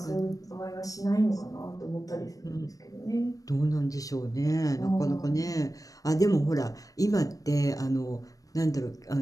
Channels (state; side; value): late; right; 0.17 ms